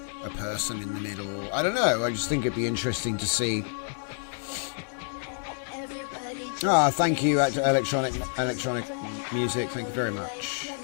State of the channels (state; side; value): silent; right; 59 dB below the other